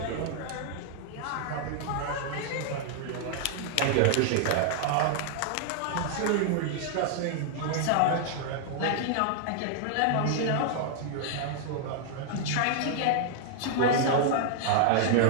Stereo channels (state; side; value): different; both; correlation 0.00